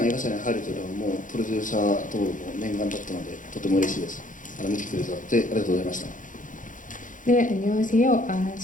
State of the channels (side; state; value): right; late; 0.38 ms